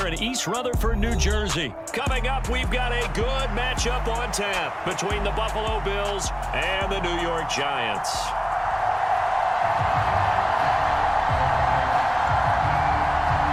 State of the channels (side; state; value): both; identical; correlation 1.00